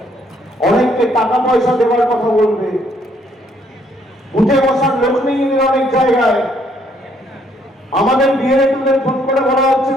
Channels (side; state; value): both; normal; correlation 0.68